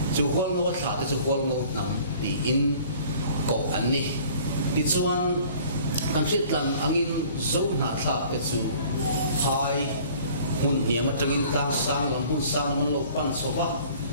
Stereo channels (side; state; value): both; inverted; correlation -0.51